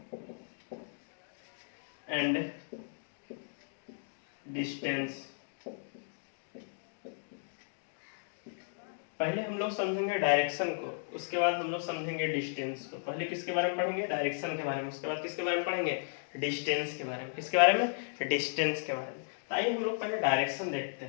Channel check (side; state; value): right; silent; digital silence